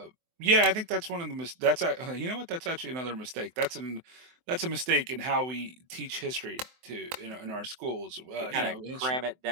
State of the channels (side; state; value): left; late; 23 ms